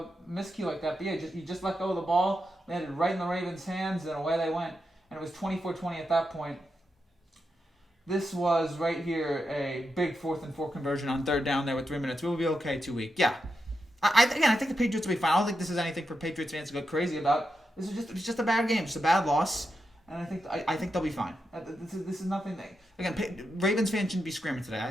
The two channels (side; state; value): both; normal; correlation 0.87